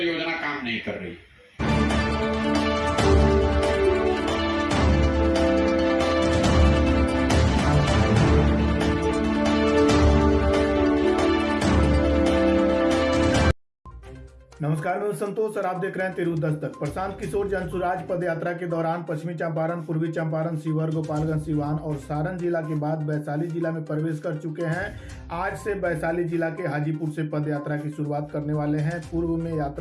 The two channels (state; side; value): identical; both; correlation 1.00